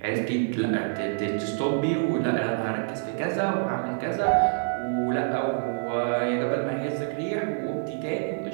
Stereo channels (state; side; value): silent; left; digital silence